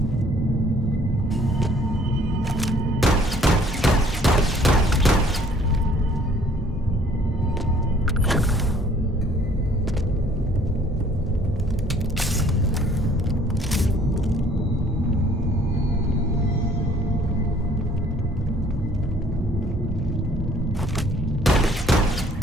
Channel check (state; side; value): normal; both; correlation 0.58